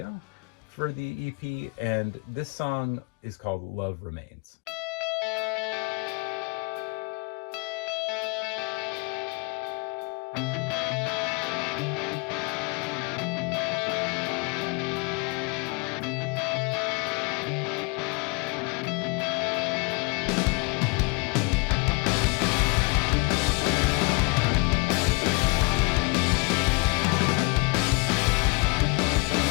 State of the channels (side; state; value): right; quieter; 30.6 dB